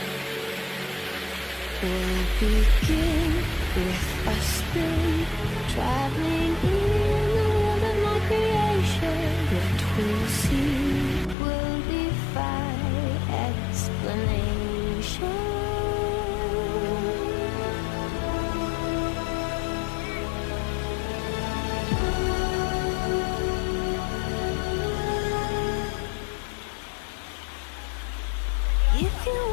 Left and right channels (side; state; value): right; drops out; at 11.4 s